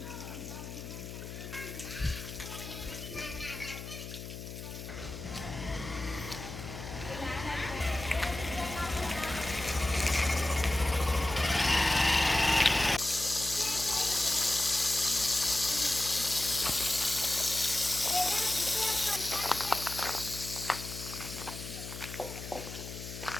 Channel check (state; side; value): noise; left; hum, 10 dB below the sound